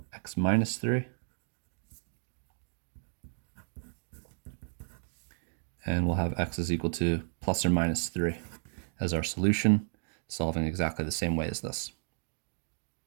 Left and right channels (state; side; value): silent; left; digital silence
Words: x minus 3. And we'll have x is equal to plus or minus 3 as our solution, solving exactly the same way as this.